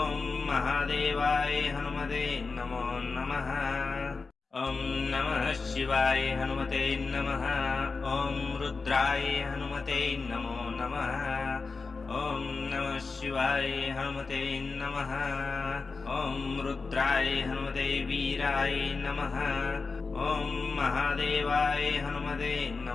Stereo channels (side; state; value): right; quieter; 4.3 dB